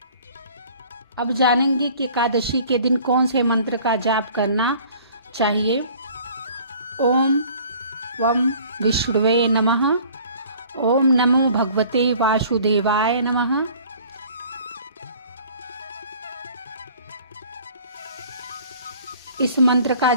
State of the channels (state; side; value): inverted; both; correlation -0.51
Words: अब जानेंगे कि एकादशी के दिन कौन से मंत्र का जाप करना चाहिए। ओम वम विष्णुवे नमः। ओम नमो भगवते वासुदेवाय नमः। इस मंत्र का